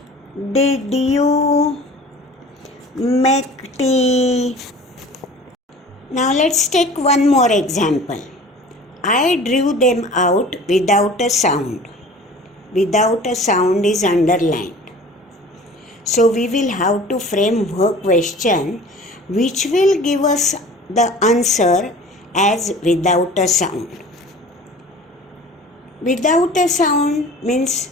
did you make tea? Now let's take one more example. I drew them out without a sound. Without a sound is underlined. So we will have to frame work question which will give us the answer as without a sound. Without a sound means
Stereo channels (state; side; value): normal; both; correlation 0.44